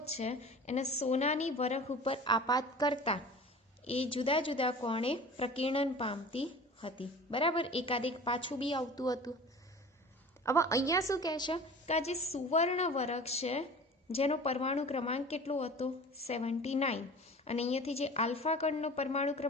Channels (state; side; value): normal; both; correlation 0.40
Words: છે એને સોનાની વરખ ઉપર આપાત કરતા એ જુદા જુદા કોણે પ્રકીર્ણન પામતી હતી. બરાબર, એકાદેક પાછું બી આવતું હતું. હવે અહીંયા શું કહે છે કે આ જે સુવર્ણ વરખ છે જેનો પરમાણુ ક્રમાંક કેટલો હતો, 79, અને અહીંયાથી જે આલ્ફા કણનો પરમાણુ